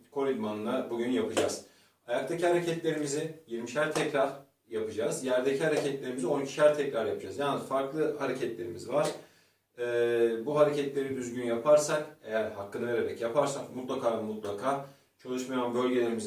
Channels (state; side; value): identical; both; correlation 1.00